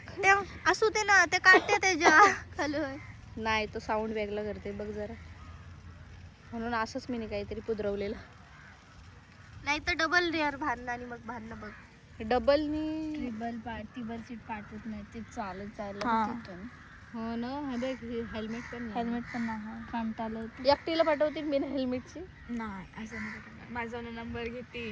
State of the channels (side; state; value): both; identical; correlation 1.00